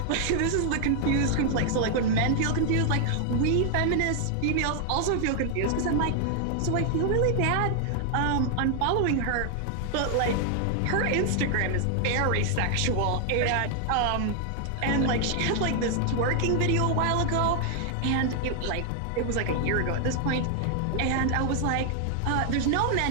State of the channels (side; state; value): both; different; correlation 0.00